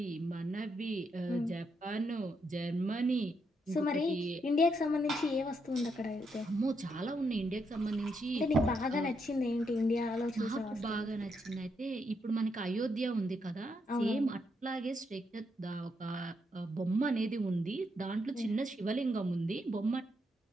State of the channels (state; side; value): normal; both; correlation 0.79